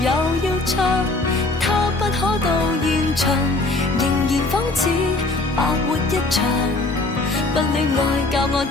又要唱？他不可到現場，仍然仿似白活一場。不戀愛教我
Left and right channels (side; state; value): right; quieter; 3.0 dB